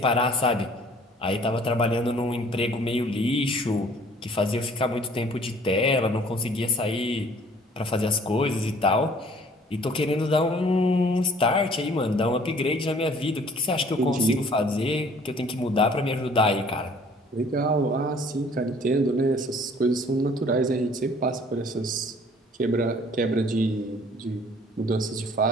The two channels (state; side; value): normal; both; correlation 0.54